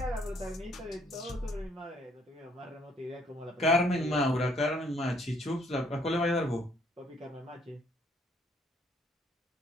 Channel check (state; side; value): normal; both; correlation 0.65